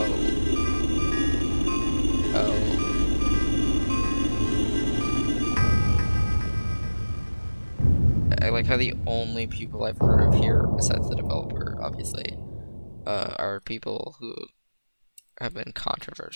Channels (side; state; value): both; inverted; correlation -1.00